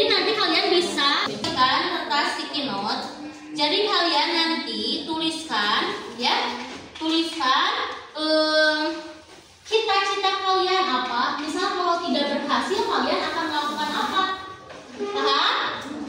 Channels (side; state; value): both; identical; correlation 1.00